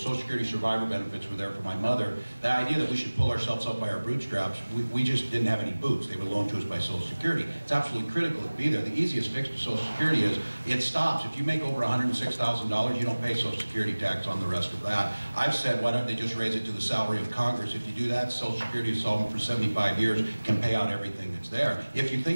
Security survivor benefits were there for my mother. The idea that we should pull ourselves up by our bootstraps, we just didn't have any boots. They were loaned to us by Social Security. It's absolutely critical to be there. The easiest fix to Social Security is it stops. If you make over $106,000, you don't pay Social Security tax on the rest of that. I've said, why don't they just raise it to the salary of Congress? If you do that, Social Security is solvent for 75 years, can pay out everything that's there. If you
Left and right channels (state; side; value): inverted; both; correlation -1.00